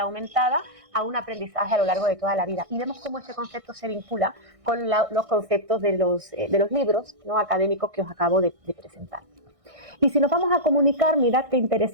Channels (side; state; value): left; late; 1.6 ms